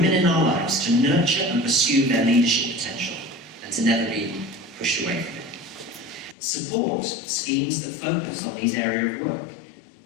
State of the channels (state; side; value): drops out; right; at 6.4 s